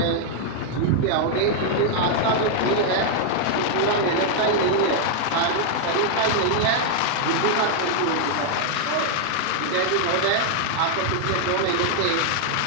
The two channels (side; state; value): both; different; correlation 0.00